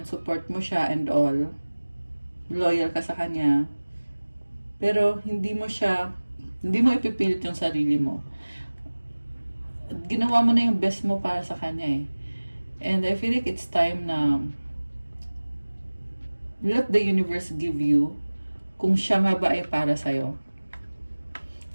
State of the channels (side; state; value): both; inverted; correlation -1.00